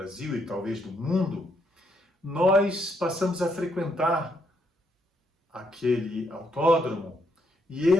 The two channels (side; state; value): both; normal; correlation 0.75